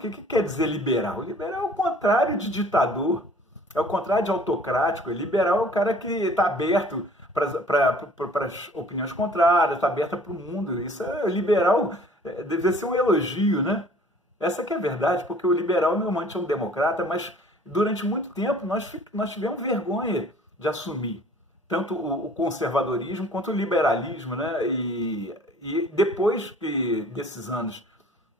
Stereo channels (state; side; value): normal; both; correlation 0.52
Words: o que quer dizer liberal? Liberal é o contrário de ditador, é o contrário de autocrático. Liberal é o cara que está aberto para as opiniões contrárias, está aberta para o mundo. Isso é liberal, deve ser um elogio, né? Essa que é a verdade, porque o liberal normalmente é um democrata, mas durante muito tempo nós tivemos vergonha de assumir tanto o conservadorismo quanto o liberalismo, né? E depois desses anos